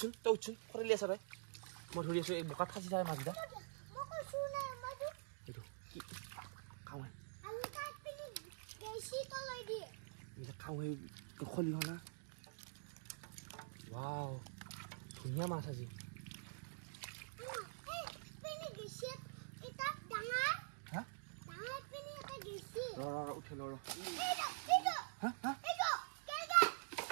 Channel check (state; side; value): silent; left; digital silence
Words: খৰিলি আছা তই মই ধৰি আছোঁ এই বোকাত ফাঁচি যায় মাছকেইটা এইটো কি খাওঁ খাওঁ খলি হনা ৱাও ধুনীয়া মাছ আজি উঠিল